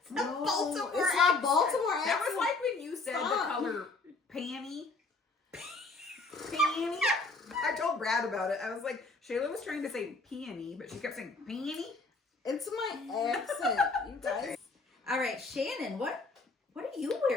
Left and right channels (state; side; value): quieter; right; 3.7 dB